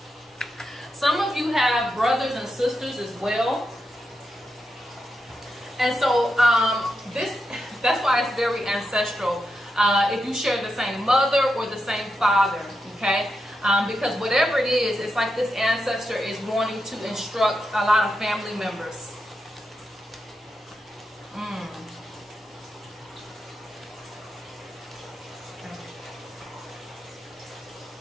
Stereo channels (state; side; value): normal; both; correlation 0.86